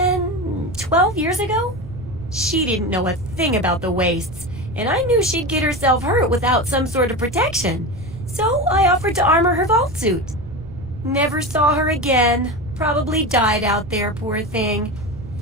12 years ago. She didn't know a thing about the wastes, and I knew she'd get herself hurt without some sort of protection. So I offered to armor her vault suit. Never saw her again. Probably died out there, poor thing.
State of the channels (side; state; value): right; noise; rumble, 15 dB below the sound